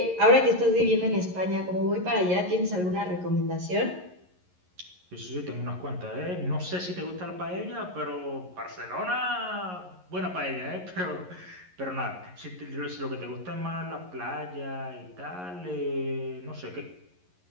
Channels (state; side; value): late; left; 11 ms